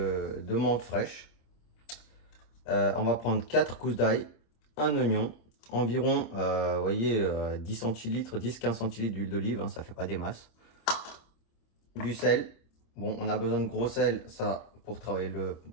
menthe fraîche. On va prendre 4 gousses d'ail, un oignon, environ, vous voyez, 10 centilitres, 10-15 centilitres d'huile d'olive, hein, ça fait pas des masses. Du sel, bon, on a besoin de gros sel, ça, pour travailler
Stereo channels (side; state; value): right; late; 26 ms